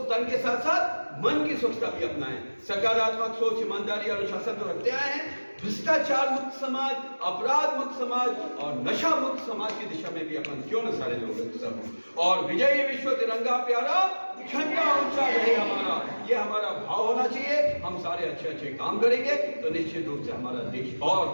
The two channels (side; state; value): both; inverted; correlation -1.00